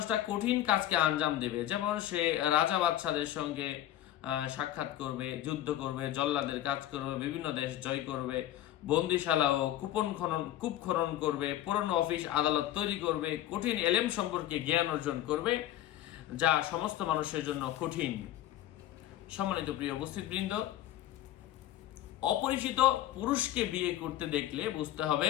কঠিন কাজকে আঞ্জাম দেবে। যেমন সে রাজা বাদশাদের সঙ্গে সাক্ষাৎ করবে, যুদ্ধ করবে, জল্লাদের কাজ করবে, বিভিন্ন দেশ জয় করবে, বন্দিশালা ও কূপ খনন করবে, পুরনো অফিস আদালত তৈরি করবে, কঠিন এলেম সম্পর্কে জ্ঞান অর্জন করবে যা সমস্ত মানুষের জন্য কঠিন। সম্মানিত প্রিয় উপস্থিতবৃন্দ, অপরিচিত পুরুষকে বিয়ে করতে দেখলে বুঝতে হবে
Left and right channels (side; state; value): right; quieter; 13.2 dB